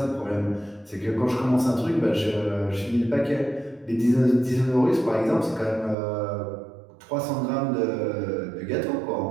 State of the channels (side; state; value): left; drops out; at 6.0 s